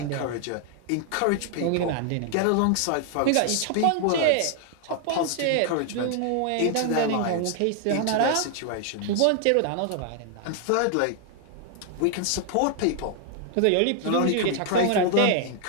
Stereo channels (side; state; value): both; different; correlation 0.00